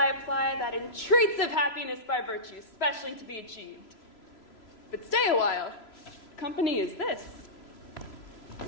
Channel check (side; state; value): right; late; 3.0 ms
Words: apply that entreats of happiness by virtue, specially to be achieved. But stay a while. Company is this.